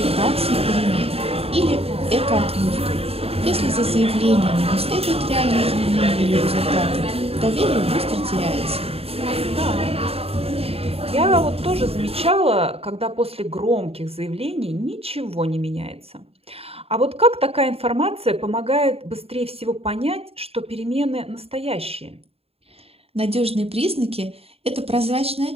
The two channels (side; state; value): left; late; 0.29 ms